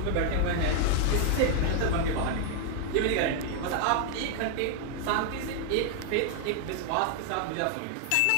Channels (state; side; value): different; both; correlation 0.00